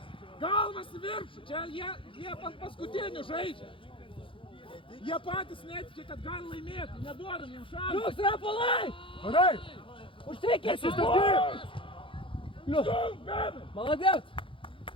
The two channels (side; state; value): right; late; 0.25 ms